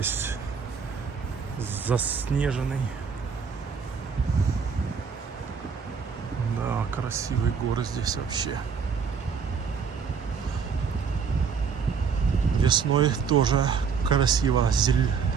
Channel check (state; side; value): quieter; left; 6.1 dB